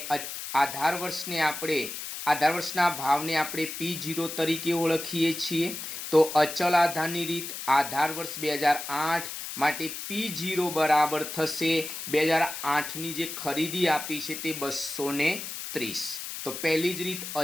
આધાર વર્ષના ભાવને આપણે P0 તરીકે ઓળખીએ છીએ। તો અચલ આધારની રીત, આધાર વર્ષ 2008 માટે P0 બરાબર થશે 2008ની જે ખરીદી આપી છે તે 230। તો પહેલી જ રીત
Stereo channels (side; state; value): left; noise; hiss, 7 dB below the sound